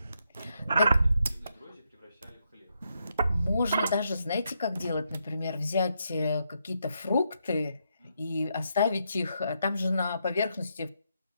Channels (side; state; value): both; inverted; correlation -0.80